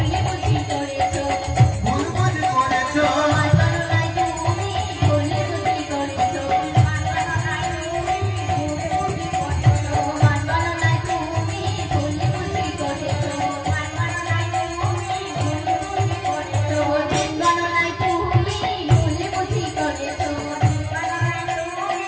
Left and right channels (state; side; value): identical; both; correlation 1.00